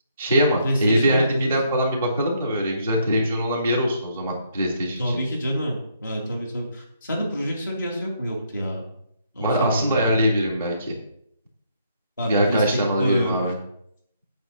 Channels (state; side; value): inverted; both; correlation -0.71